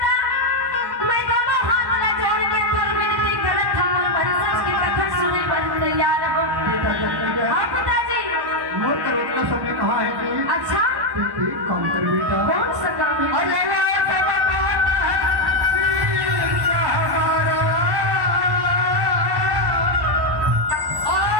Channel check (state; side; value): late; left; 1.1 ms